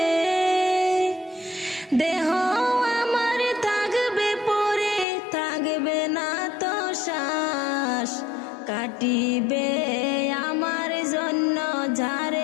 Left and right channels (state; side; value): drops out; right; at 5.1 s